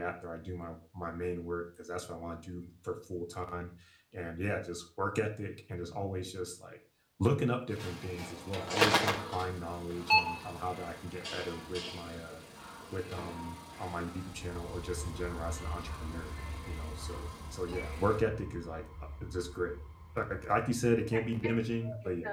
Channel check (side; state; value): both; identical; correlation 1.00